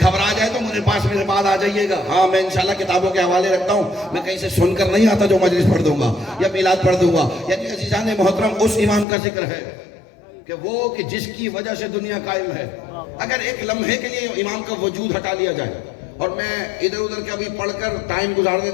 جائے تو مجھے پاس میرے بعد آ جائیے گا. ہاں میں انشاءاللہ کتابوں کے حوالے رکھتا ہوں، میں کہیں سے سن کر نہیں آتا جو مجلس پڑھ دوں گا یا میلاد پڑھ دوں گا. یعنی عزیزان محترم اس امام کا ذکر ہے کہ وہ کہ جس کی وجہ سے دنیا قائم ہے. اگر ایک لمحے کے لیے امام کا وجود ہٹا لیا جائے، اور میں ادھر ادھر کے ابھی پڑھ کر ٹائم گزارنے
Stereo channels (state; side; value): drops out; right; at 9.1 s